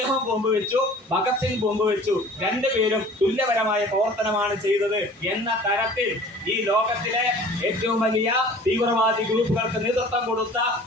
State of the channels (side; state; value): both; normal; correlation 0.46